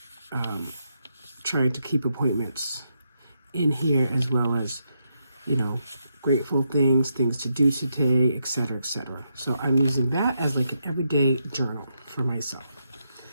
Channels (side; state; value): both; inverted; correlation -0.82